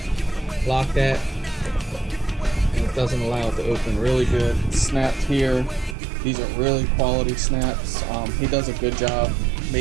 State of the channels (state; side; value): drops out; left; at 6.0 s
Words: lock that, and it doesn't allow it to open. Really good. Snaps here. These are really quality snaps. He does a good job